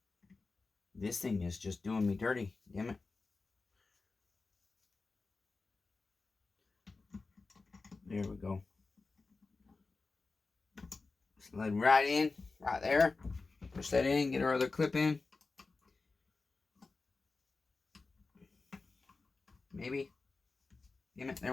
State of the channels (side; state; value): right; quieter; 3.9 dB